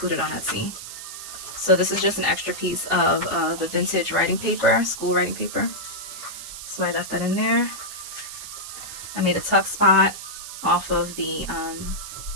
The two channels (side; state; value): right; noise; hiss, 10 dB below the sound